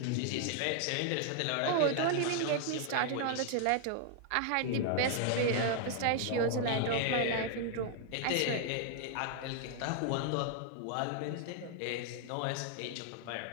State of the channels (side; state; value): both; different; correlation 0.00